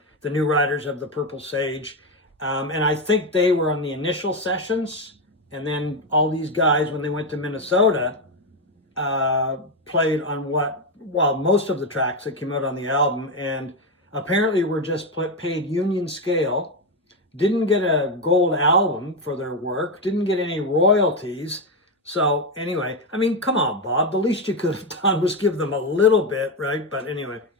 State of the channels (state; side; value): normal; both; correlation 0.09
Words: New Riders of the Purple Sage. And I think they were on the initial sessions. And then all these guys, when they went to Minnesota, played on most of the tracks that came out on the album, and apparently were just paid union scale, didn't get a gold album for their work, didn't get any royalties. So anyway, I mean, come on, Bob, the least you could have done was give them a little bit, right? But anyway.